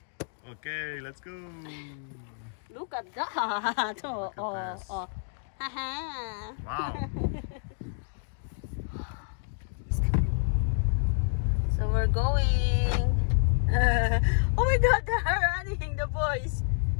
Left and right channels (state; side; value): silent; right; digital silence